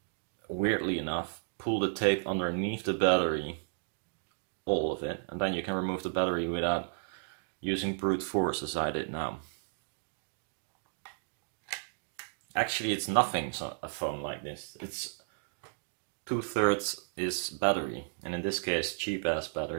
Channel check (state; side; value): silent; left; digital silence